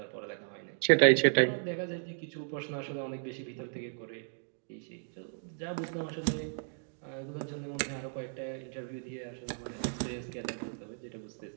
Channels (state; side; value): silent; left; digital silence